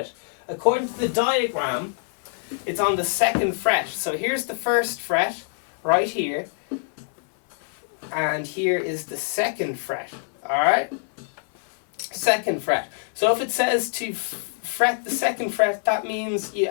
According to the diagram, it's on the 2nd fret. So here's the 1st fret, right here. And here is the 2nd fret, alright? 2nd fret. So if it says to fret the 2nd fret, that means you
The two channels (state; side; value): silent; right; 62 dB below the other